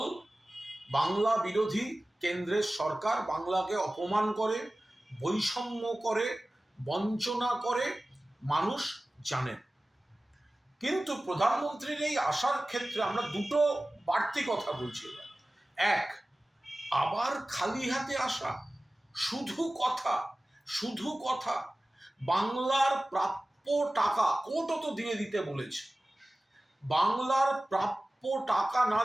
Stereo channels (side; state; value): both; normal; correlation 0.97